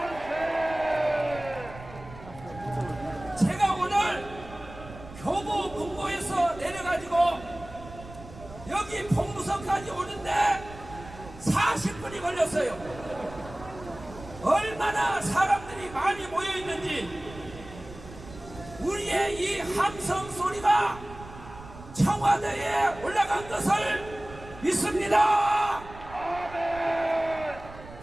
제가 오늘 교보 문고에서 내려가지고 여기 봉무서까지 오는데 40분이 걸렸어요. 얼마나 사람들이 많이 모여있는지 우리의 이 함성 소리가 청와대에 올라간 것을 믿습니다.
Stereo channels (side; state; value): right; noise; rumble, 16 dB below the sound